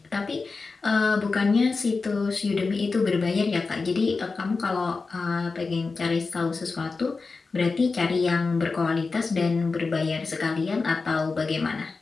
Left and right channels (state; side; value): quieter; right; 4.2 dB